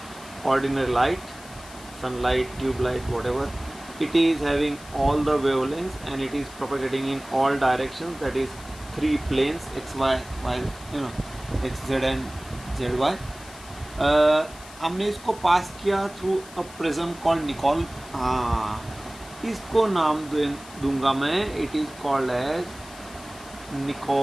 ordinary light, sunlight, tube light, whatever. It is having all the wavelengths and it is propagating in all directions, that is 3 planes, x, y, y, x, z and z, y. हमने इसको pass किया through a prism called Nicol. हाँ, इसको नाम दूंगा मैं, it is called as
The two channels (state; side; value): noise; left; hiss, 19 dB below the sound